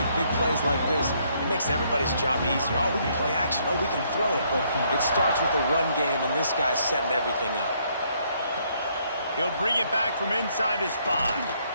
big plays like this, it makes everybody's job easier. Oh, we can play action. Oh, we can throw it. But it starts with the run game, and this guy's setting everything up. He'll bring it back from inside his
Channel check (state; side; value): inverted; both; correlation -0.69